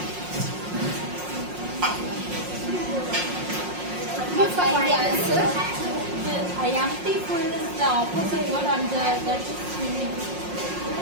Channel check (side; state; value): left; late; 5.5 ms